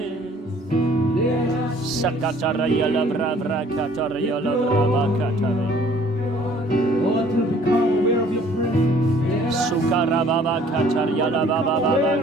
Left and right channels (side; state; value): both; normal; correlation 0.56